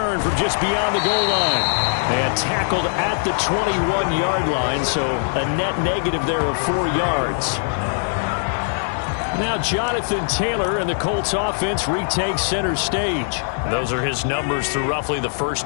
from just beyond the goal line. And tackled at the 21-yard line, so a net negative there of 4 yards. Now Jonathan Taylor and the Colts offense retakes center stage. Those are his numbers through roughly the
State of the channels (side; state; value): right; silent; digital silence